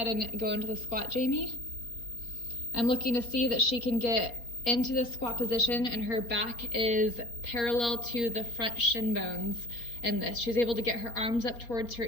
and go into the squat, Jamie. I'm looking to see that she can get into the squat position and her back is parallel to the front shin bones in this. She's able to get her arms up towards her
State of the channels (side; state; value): right; late; 4.3 ms